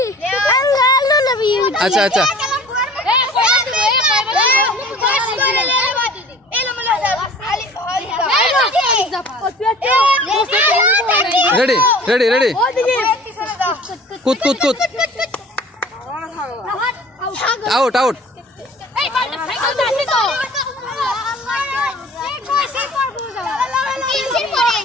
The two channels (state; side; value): normal; both; correlation 0.46